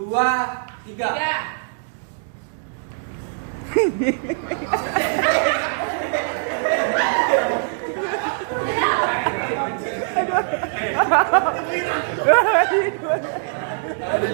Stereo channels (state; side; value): silent; left; digital silence